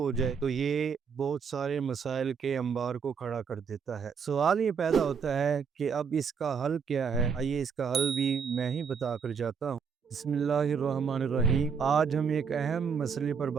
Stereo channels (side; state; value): left; quieter; 6.3 dB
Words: ہو جائے، تو یہ بہت سارے مسائل کے انبار کو کھڑا کر دیتا ہے۔ سوال یہ پیدا ہوتا ہے کہ اب اس کا حل کیا ہے؟ آئیے اس کا حل بھی میں ہی بتا کر جاتا ہوں۔ بسم اللہ الرحمن الرحیم۔ آج ہم ایک اہم مسئلے پر